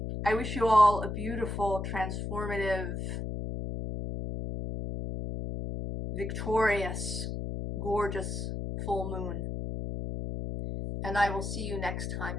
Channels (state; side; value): noise; left; hum, 4 dB below the sound